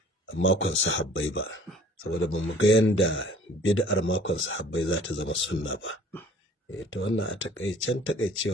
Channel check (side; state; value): both; normal; correlation 0.51